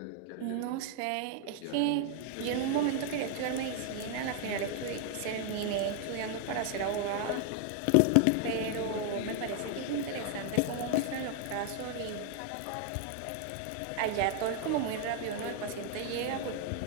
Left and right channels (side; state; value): both; different; correlation 0.00